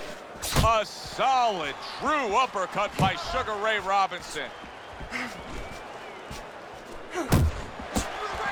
A solid, true uppercut by Sugar Ray Robinson.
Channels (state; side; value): identical; both; correlation 1.00